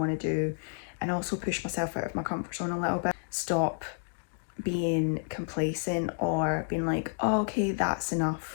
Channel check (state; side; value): silent; right; digital silence